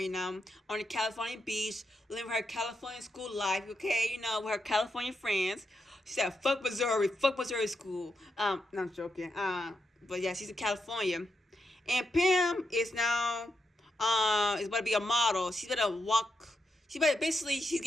now, on the California beach, living her California school life, okay? With her California friends. She said, fuck Missouri school. No, I'm joking. But yeah, she's in California. And Pam is now, is about to be a model. She's about to walk, she's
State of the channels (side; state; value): both; normal; correlation 0.84